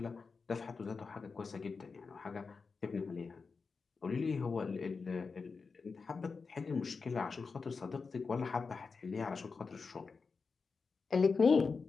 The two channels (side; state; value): right; quieter; 4.8 dB